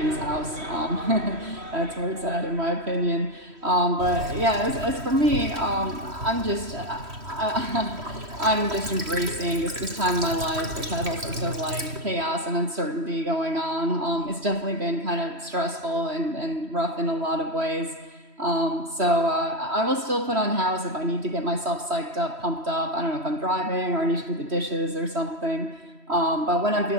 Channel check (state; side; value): late; left; 3.1 ms